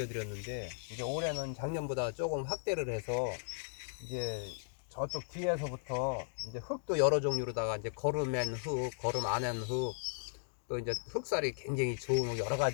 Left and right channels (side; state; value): right; silent; digital silence